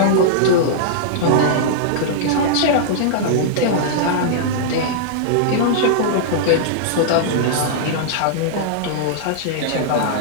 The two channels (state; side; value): different; both; correlation -0.02